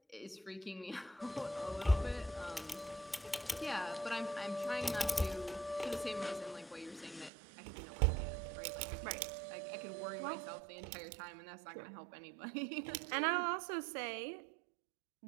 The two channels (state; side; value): drops out; left; at 7.3 s